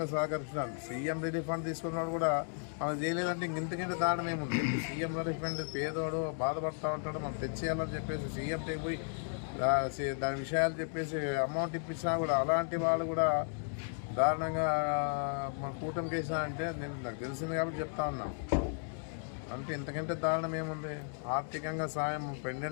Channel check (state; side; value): silent; right; 55 dB below the other